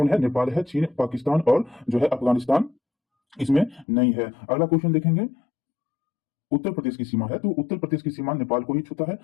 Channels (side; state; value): right; drops out; at 3.9 s